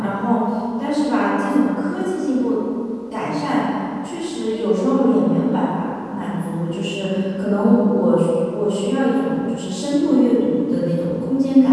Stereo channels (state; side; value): identical; both; correlation 1.00